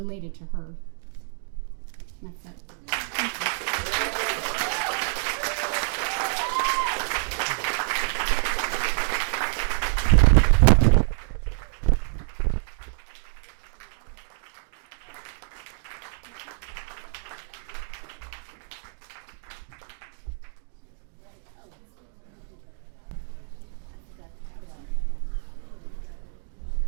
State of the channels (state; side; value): silent; left; 60 dB below the other